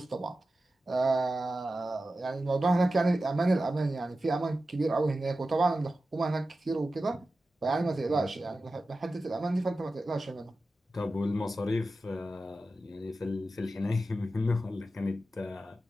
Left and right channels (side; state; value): both; normal; correlation 0.93